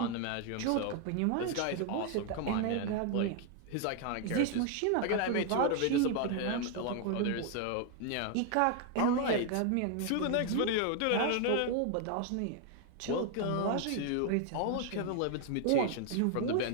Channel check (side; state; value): both; different; correlation 0.00